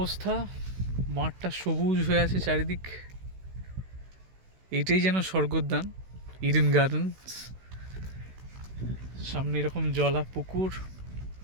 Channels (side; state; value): left; late; 16 ms